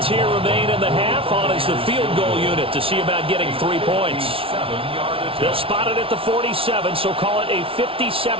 here remain in the half. On is the field goal unit to see about getting 3 points. They'll spot it at the 47, so call it a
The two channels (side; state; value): left; late; 0.26 ms